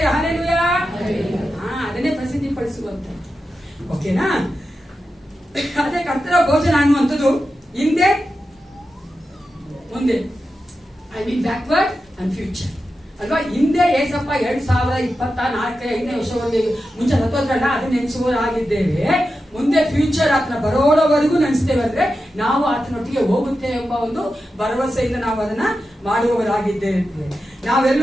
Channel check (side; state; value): both; normal; correlation 0.90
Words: ಹಲ್ಲೆಲೂಯಾ. ಅದನ್ನೇ ಪ್ರಸಿದ್ಧಿ ಪಡಿಸುವಂತ. ಓಕೆನಾ? ಅದೇ ಕರ್ತನ ಭೋಜನ ಅನ್ನುವಂಥದ್ದು ಹಿಂದೆ ಮುಂದೆ, I mean backward and future ಅಲ್ವಾ? ಹಿಂದೆ ಏಸಪ್ಪ 2024 ವರ್ಷವರೆಗೆ ಮುಂಚೆ ಸತ್ತೋದ್ರಲ್ಲ, ಅದು ನೆನೆಸುವವರಾಗಿದ್ದೇವೆ. ಮುಂದೆ ಫ್ಯೂಚರ್ ಆತನ ಬರೋವರೆಗೂ ನೆನೆಸ್ತೇವೆ. ಅಂದ್ರೆ ನಾವು ಆತನೊಟ್ಟಿಗೆ ಹೋಗುತ್ತೇವೆ ಎಂಬ ಒಂದು ಭರವಸೆಯಿಂದ ನಾವು ಅದನ್ನ ಮಾಡುವವರಾಗಿದ್ದೇವೆ.